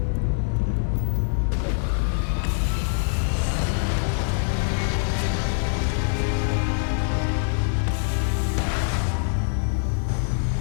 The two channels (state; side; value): silent; right; 57 dB below the other